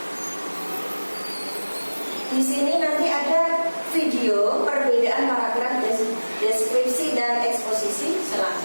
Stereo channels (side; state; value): both; inverted; correlation -1.00